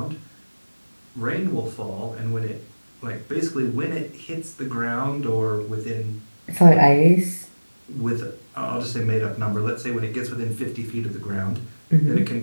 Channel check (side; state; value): both; inverted; correlation -1.00